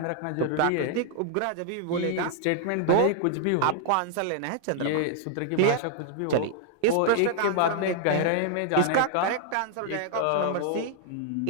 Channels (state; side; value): different; both; correlation -0.01